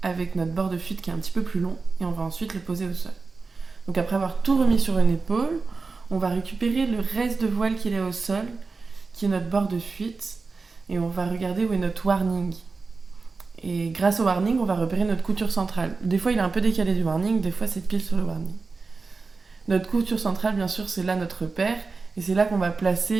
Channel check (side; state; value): left; quieter; 4.3 dB